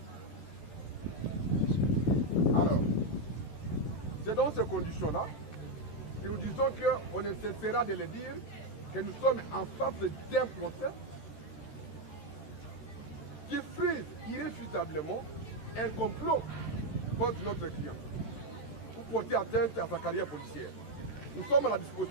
Alors, c'est dans ces conditions-là que nous disons qu'on ne cessera de le dire, que nous sommes en face d'un procès qui frise irréfutablement un complot contre notre client pour porter atteinte à sa carrière policière. Nous sommes à la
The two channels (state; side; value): late; right; 13 ms